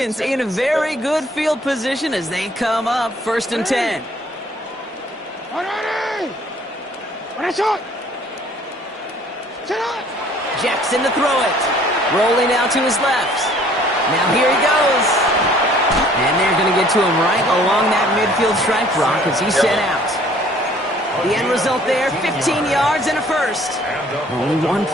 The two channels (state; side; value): normal; both; correlation 0.57